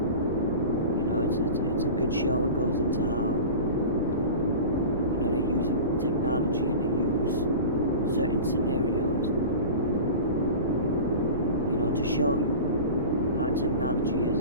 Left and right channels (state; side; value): inverted; both; correlation -0.34